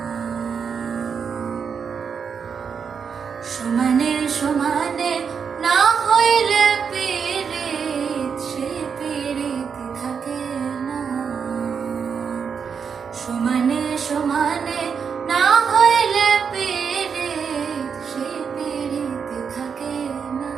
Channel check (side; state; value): left; quieter; 6.4 dB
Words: সমানে সমানে না হইলে পিরিত সেই পিরিতি থাকে না। সমানে সমানে না হইলে পিরিত সেই পিরিতি থাকে না।